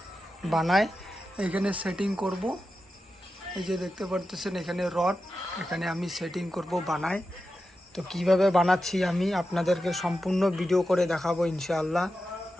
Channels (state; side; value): normal; both; correlation 0.91